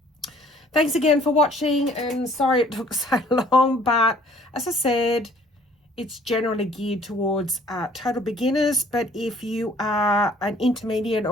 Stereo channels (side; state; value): both; normal; correlation 0.56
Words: Thanks again for watching, and sorry it took so long, but as I said, it's generally geared towards total beginners, but if you are an intermediate